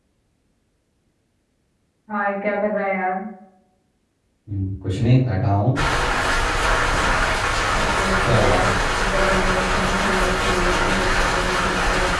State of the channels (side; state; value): both; identical; correlation 1.00